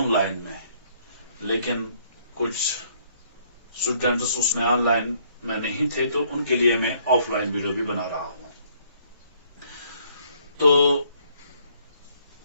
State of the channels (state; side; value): inverted; both; correlation -0.65